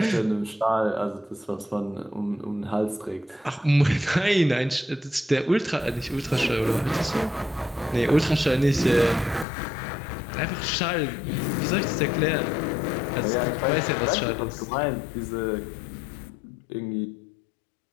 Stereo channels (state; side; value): drops out; right; at 9.5 s